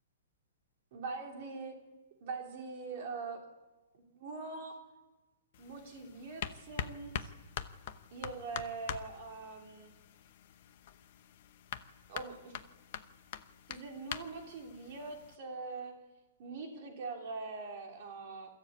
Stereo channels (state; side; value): inverted; both; correlation -0.36